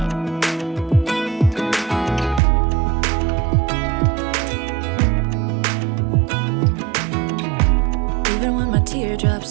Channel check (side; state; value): left; drops out; at 2.4 s